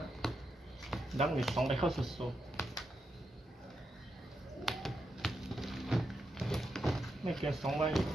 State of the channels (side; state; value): both; normal; correlation 0.85